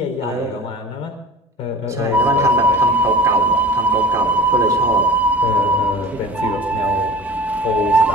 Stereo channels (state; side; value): normal; both; correlation 0.39